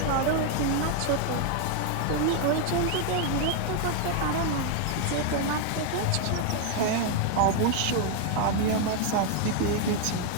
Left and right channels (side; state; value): both; different; correlation 0.01